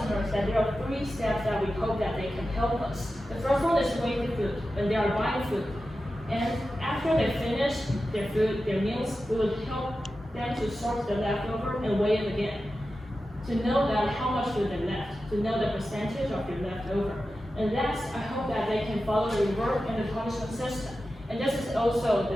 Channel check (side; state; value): both; normal; correlation 0.92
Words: that there are 3 steps that we hope that they can help us. The first one is weighing the food, when they are buying food. And after they finish their food, their meals, we will help them to sort the leftover and weigh it again. To know that how much food they left, to know the percentage of your leftover. And last, I hope that they can follow the reward and the punishment system. And this is also